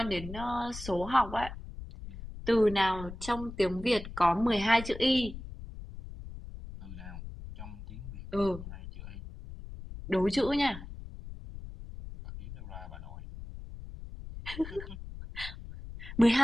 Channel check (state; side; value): noise; left; rumble, 11 dB below the sound